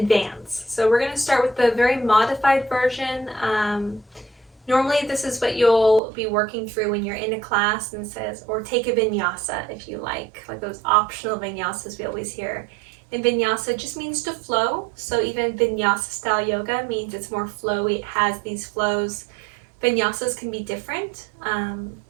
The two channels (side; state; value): left; drops out; at 6.0 s